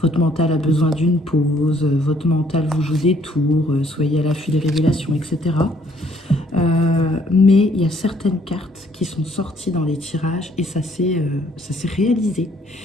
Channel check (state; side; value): normal; both; correlation 0.64